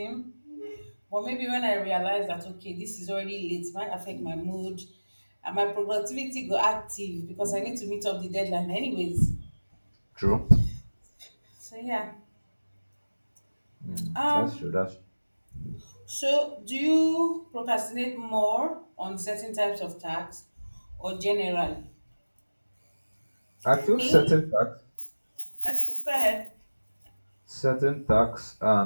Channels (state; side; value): inverted; both; correlation -1.00